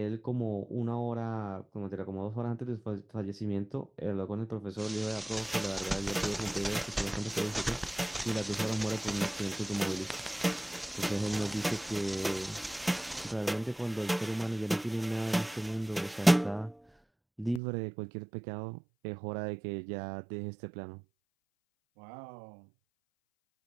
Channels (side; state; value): left; drops out; at 17.6 s